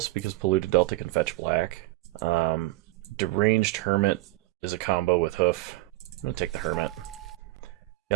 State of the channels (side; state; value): left; quieter; 19.3 dB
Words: because Polluted Delta can fetch black. Deranged Hermit is a combo with Hoof. I'm going to take the Hermit.